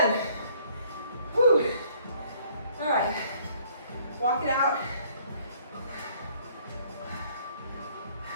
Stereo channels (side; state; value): both; inverted; correlation -0.61